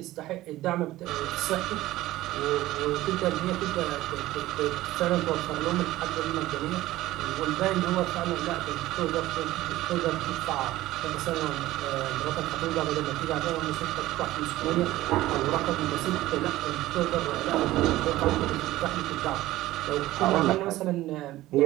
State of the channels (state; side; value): quieter; left; 16.4 dB